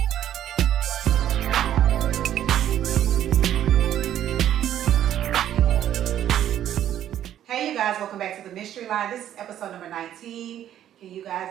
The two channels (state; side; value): quieter; left; 11.2 dB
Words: Hey you guys, welcome back to the Mystery Line. This is episode number 19. Can you